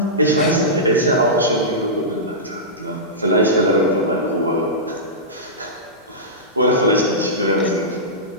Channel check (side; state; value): both; normal; correlation -0.15